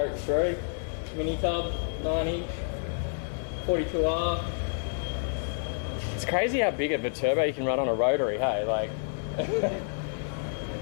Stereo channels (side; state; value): right; silent; digital silence